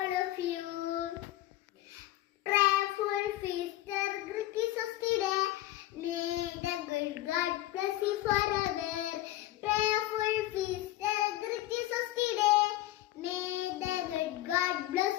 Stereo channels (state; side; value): quieter; right; 15.4 dB